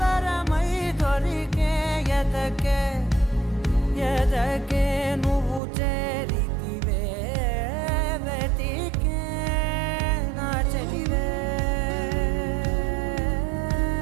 వరమై దొరికే ఎదకే ఎదకే నువ్వు చేరితివే వెతికే నా చెలివే.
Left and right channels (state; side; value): drops out; left; at 5.6 s